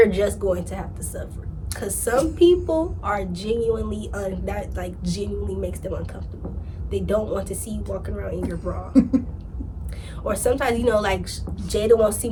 just going to have to suffer. Because some people are genuinely, that like genuinely makes them uncomfortable. They don't want to see you walking around in your bra. Or sometimes, like Jada won't see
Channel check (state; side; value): identical; both; correlation 1.00